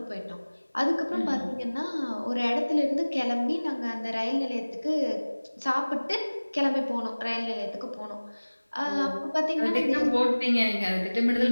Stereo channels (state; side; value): inverted; both; correlation -1.00